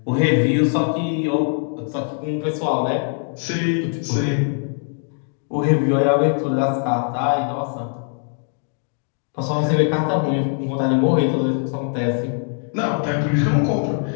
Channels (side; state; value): right; silent; 56 dB below the other